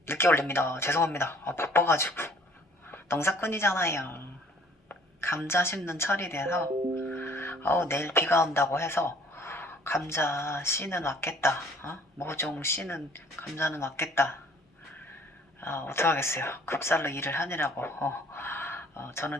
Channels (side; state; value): both; normal; correlation 0.56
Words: 늦게 올립니다. 죄송합니다. 바빠가지고. 농사꾼이잖아요. 감자 심는 철이 돼서 내일 비가 온다고 해서 감자 씨는 왔겠다. 모종 씨는 감자는 왔겠다. 어떡하겠어요. 급살로 일을 하느라고. 저는